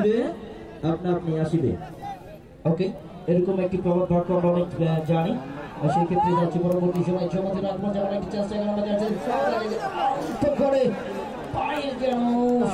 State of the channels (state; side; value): identical; both; correlation 1.00